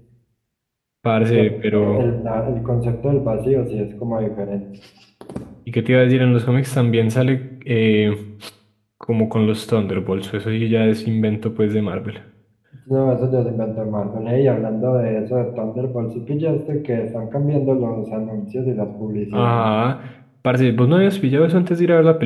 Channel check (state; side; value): identical; both; correlation 1.00